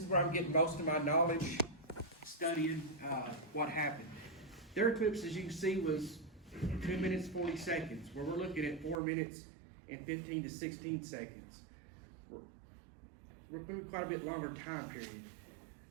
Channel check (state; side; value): drops out; left; at 9.0 s